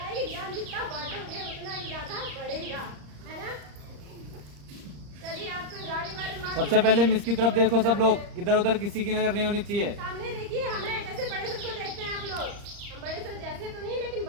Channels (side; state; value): left; late; 35 ms